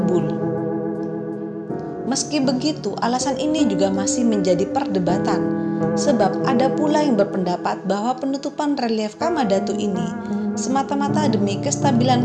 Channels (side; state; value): both; identical; correlation 1.00